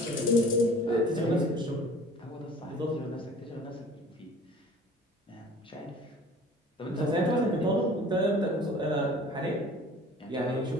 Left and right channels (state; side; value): normal; both; correlation 0.47